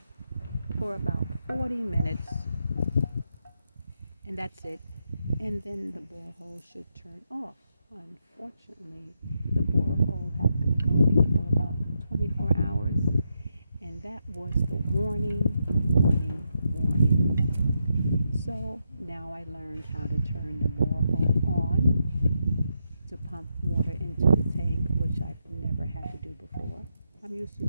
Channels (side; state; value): both; inverted; correlation -0.82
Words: for about 40 minutes, and that's it. And then the borehole should turn off. Unfortunately, the borehole had been going for about 24 hours, and that was the warning. So now I learned how to turn the borehole on to pump water into the tank, which I've never had to do before. I'm used to